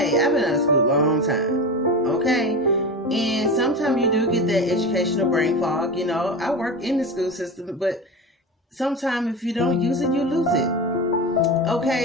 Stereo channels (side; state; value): both; normal; correlation 0.25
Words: I've been out of school a long time, okay? And sometimes you do get that educational brain fog, you know. I work in the school system, but sometimes if you don't use it, you lose it.